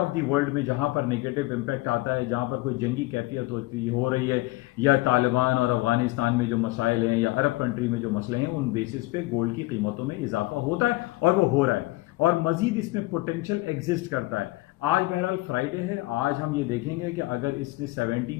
the world में जहां पर नेगेटिव इंपैक्ट आता है, जहां पर कोई जंगी कैफियत हो रही है, या तालिबान और अफगानिस्तान में जो मसाइल हैं या अरब कंट्री में जो मसले हैं, उन बेसिस पे गोल्ड की कीमतों में इजाफा होता है, और वो हो रहा है, और मजीद इसमें पोटेंशियल एग्जिस्ट करता है। आज बहरहाल फ्राइडे है, आज हम ये देखेंगे कि अगर इसने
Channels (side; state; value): right; quieter; 20.3 dB